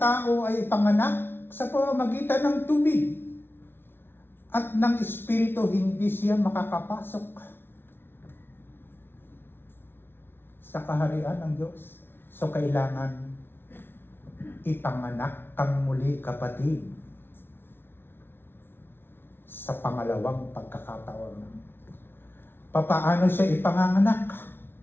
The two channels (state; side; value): late; right; 0.11 ms